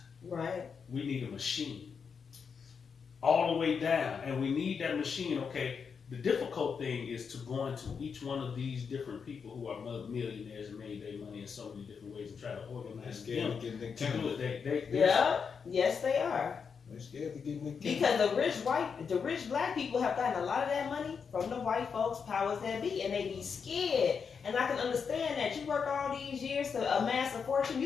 Right. We need a machine. All the way down. And we need that machine, okay. The difficult thing is to go into each one of these different people who are millionaires and made their money in so many different ways and try to organize them to get Nick to do Cannon. it. Yeah. Yes, they are. They're scared to get Nick Cannon. Because the rich black people have gotten a lot of that money from the white folks, powers that be, and they be scared. And I can understand that you work all these years to amass a fortune.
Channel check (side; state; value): right; quieter; 6.1 dB